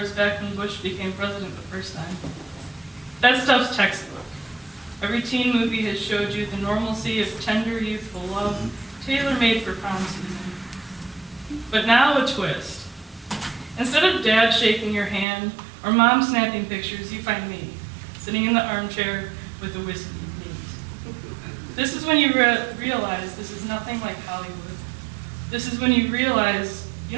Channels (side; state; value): left; drops out; at 15.2 s